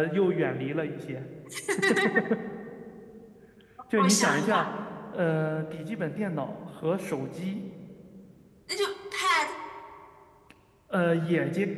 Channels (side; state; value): both; identical; correlation 1.00